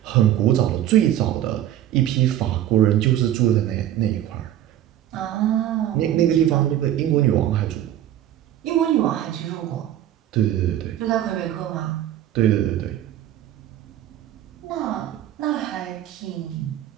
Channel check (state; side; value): quieter; left; 12.0 dB